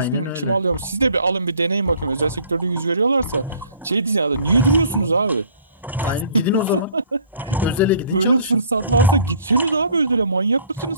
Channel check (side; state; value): both; inverted; correlation -0.54